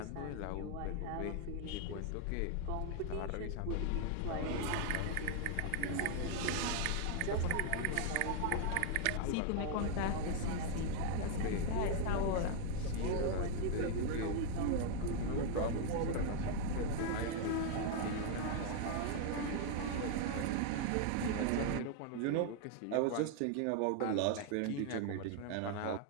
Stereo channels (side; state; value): both; different; correlation 0.00